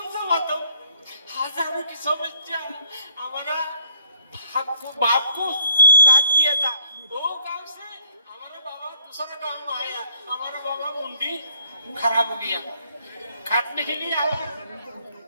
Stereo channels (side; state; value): both; inverted; correlation -0.61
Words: सा बताऊं हजारों की समस्या हमारा बाप को काट दिया था वो गांव से हमारा बाबा दूसरा गांव में आया हमारा बाबा मुंडी खराब हो गया काटने के लिए आया